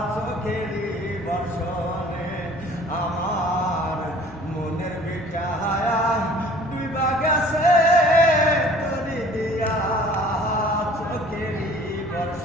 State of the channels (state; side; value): normal; both; correlation 0.51